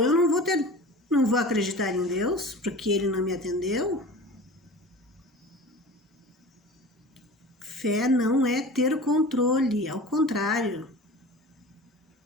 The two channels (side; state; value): both; normal; correlation 0.37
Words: não vou acreditar em Deus, porque Ele não me atendeu. Fé não é ter controle, ao contrário.